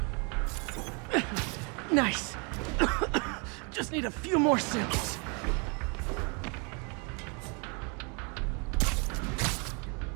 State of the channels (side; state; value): left; quieter; 33.3 dB